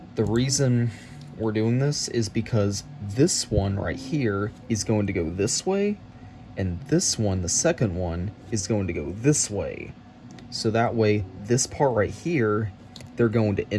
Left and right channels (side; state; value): both; identical; correlation 1.00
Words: The reason we're doing this is because this one right here is going to go this way, and this one, the second one, is going to go this way. So that way, this part right here, they're going to